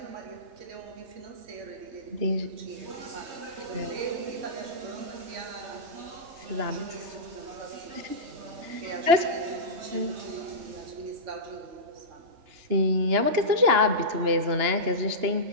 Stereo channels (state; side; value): late; left; 2.9 ms